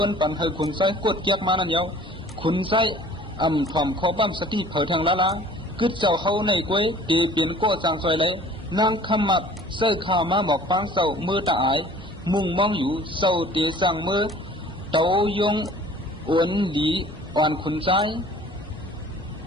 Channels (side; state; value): both; normal; correlation 0.49